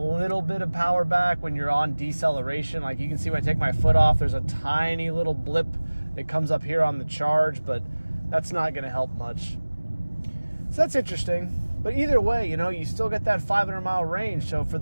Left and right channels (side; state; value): both; inverted; correlation -1.00